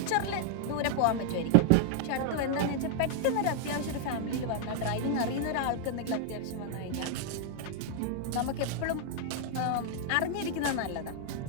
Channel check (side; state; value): both; different; correlation 0.00